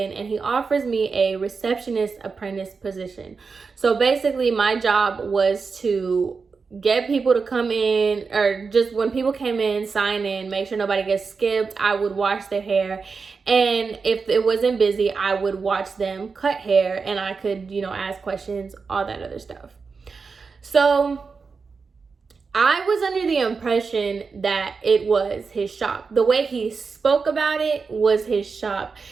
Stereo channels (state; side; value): quieter; left; 4.9 dB